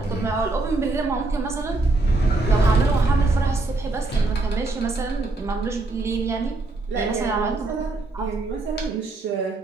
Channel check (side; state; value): left; quieter; 3.2 dB